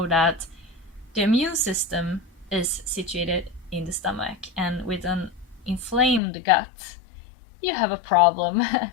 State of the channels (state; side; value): drops out; right; at 6.2 s